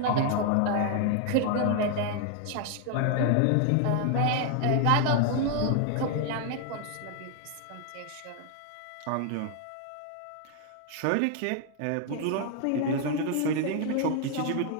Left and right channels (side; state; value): both; different; correlation 0.00